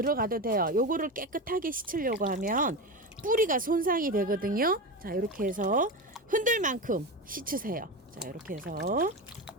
돼요. 요거를 깨끗하게 씻으려고 하면 뿌리가 손상이 되거든요. 자, 이렇게 해서 흔들 만큼 씻으세요. 자, 이렇게 해서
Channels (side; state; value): both; normal; correlation 0.21